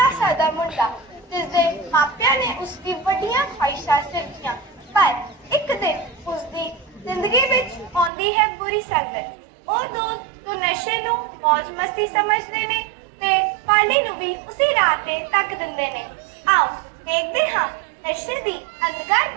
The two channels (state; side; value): drops out; left; at 8.1 s